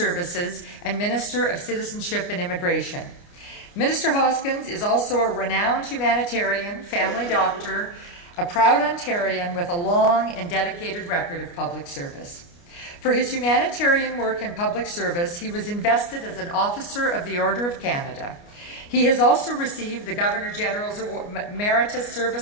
and Minister of Citizenship and Immigration. Minister Hoskins is also a renowned humanitarian, family doctor, a proud Ontarian with a long and dedicated record of public service. For his humanitarian work and public service, he was invested as an Officer of the Order of Canada. He has also received the Governor-General's Meritorious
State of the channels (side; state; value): right; late; 29 ms